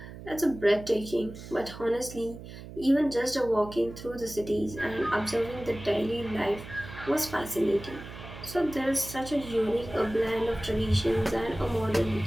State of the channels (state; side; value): noise; right; hum, 13 dB below the sound